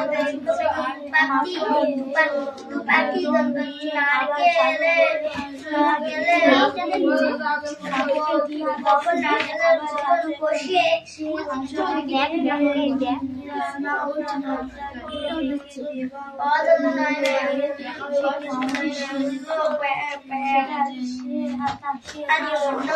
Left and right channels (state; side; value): identical; both; correlation 1.00